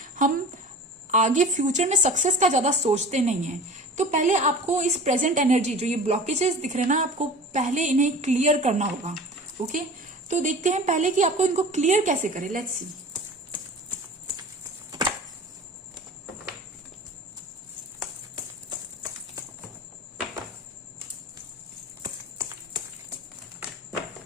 हम आगे फ्यूचर में सक्सेस का ज्यादा सोचते नहीं है। तो पहले आपको इस प्रेजेंट एनर्जी, जो ये ब्लॉकेजेस दिख रहे हैं ना, आपको पहले इन्हें क्लियर करना होगा। ओके, तो देखते हैं पहले कि आपको इनको क्लियर कैसे करें। Let's see.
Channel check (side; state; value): both; normal; correlation 0.39